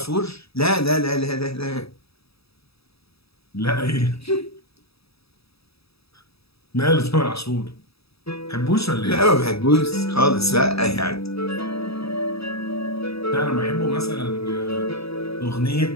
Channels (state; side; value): late; right; 0.77 ms